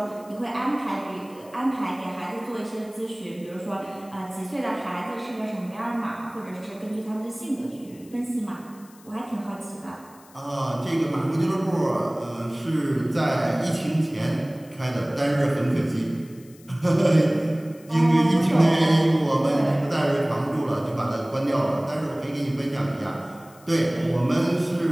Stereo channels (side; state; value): left; noise; hiss, 25 dB below the sound